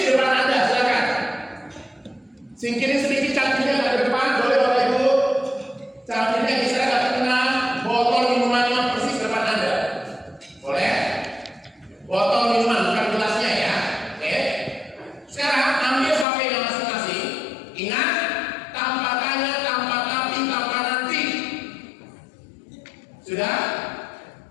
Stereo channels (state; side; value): drops out; right; at 16.2 s